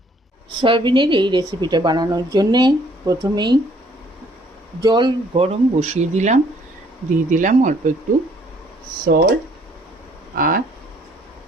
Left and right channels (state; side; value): normal; both; correlation 0.62